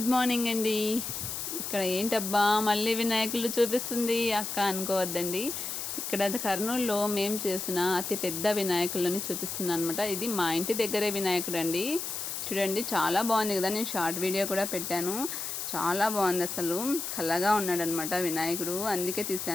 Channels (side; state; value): left; noise; hiss, 5 dB below the sound